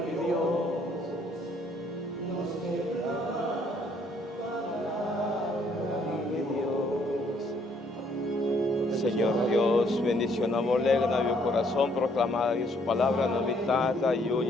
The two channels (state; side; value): normal; both; correlation 0.66